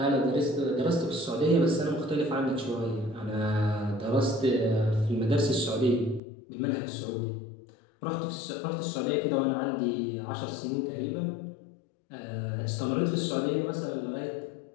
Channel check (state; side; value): drops out; right; at 6.2 s